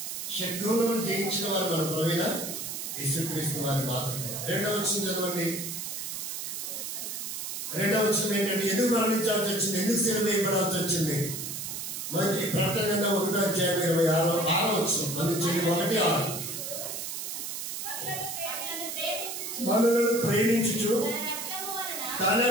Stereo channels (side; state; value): right; noise; hiss, 5 dB below the sound